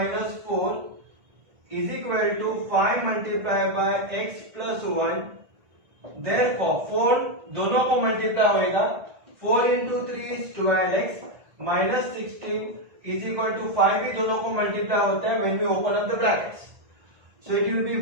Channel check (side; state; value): left; late; 1.6 ms